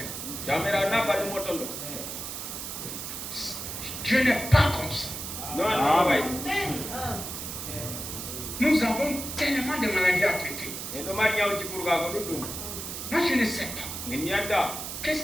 Dieu n'est pas comme ça. Nous avons tellement de maladies à traiter. Moi je ne sais pas. Qu'est-ce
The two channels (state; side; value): noise; right; hiss, 7 dB below the sound